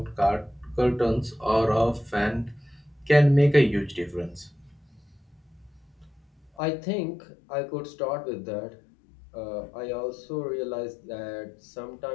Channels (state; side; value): drops out; right; at 6.5 s